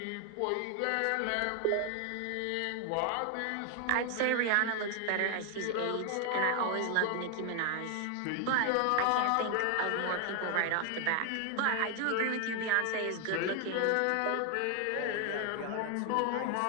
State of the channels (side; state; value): both; different; correlation 0.01